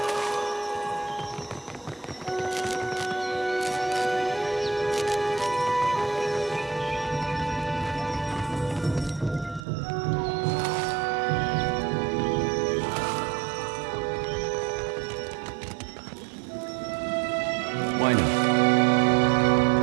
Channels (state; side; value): drops out; left; at 9.7 s